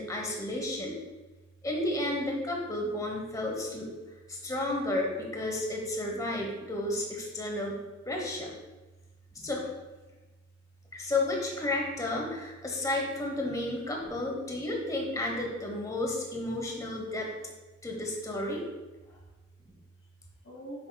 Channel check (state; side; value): normal; both; correlation 0.37